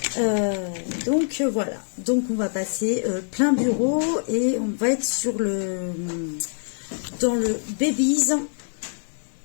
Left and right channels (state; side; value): silent; right; digital silence